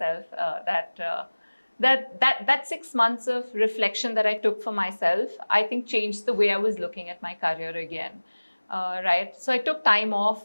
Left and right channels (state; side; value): inverted; both; correlation -1.00